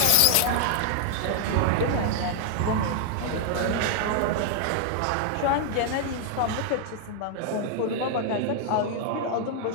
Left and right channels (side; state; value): both; different; correlation 0.00